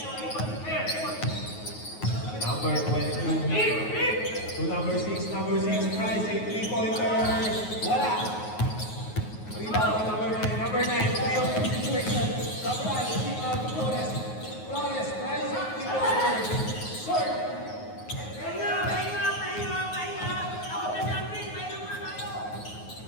Number 22 to number 6. Number 6, Price, a 3-pointer. Wala. Rebound to number 9. Number 9, 3-on-2 situation. Sabral, keep out to Flores. Flores, Price, a 3-pointer. Short.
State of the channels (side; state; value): right; late; 9.4 ms